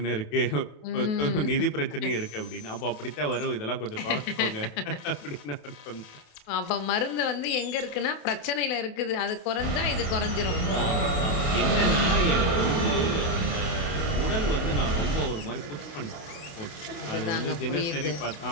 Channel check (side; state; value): right; late; 28 ms